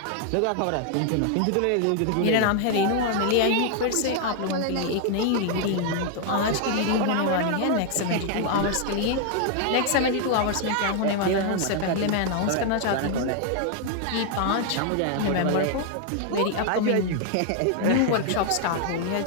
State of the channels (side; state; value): both; different; correlation 0.00